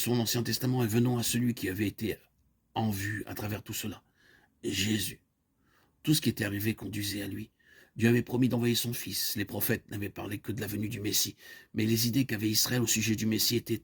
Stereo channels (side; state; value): both; identical; correlation 1.00